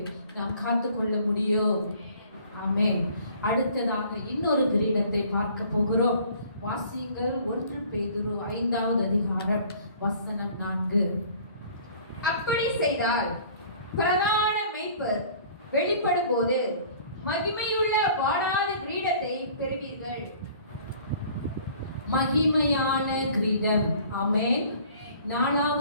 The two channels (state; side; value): inverted; both; correlation -0.52